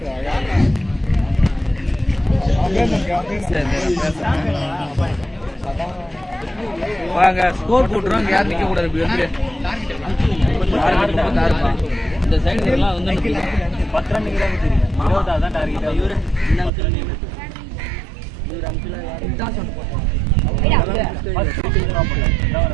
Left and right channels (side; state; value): left; drops out; at 16.7 s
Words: வாங்க ஸ்கோர் போட்டுறோம், யாரும் நிக்க கூடாது. இப்படி வந்து இந்த சைடு எல்லாம் வந்து 10 ரன் தான் டார்கெட். இவரு